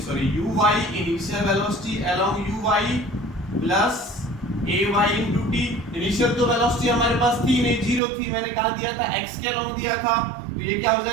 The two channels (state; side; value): drops out; left; at 8.0 s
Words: velocity along uy plus ay into t। Initial तो वेलोसिटी हमारे पास थी नहीं, 0 थी, मैंने कहा दिया था x के अलोंग दिया था, तो ये क्या हो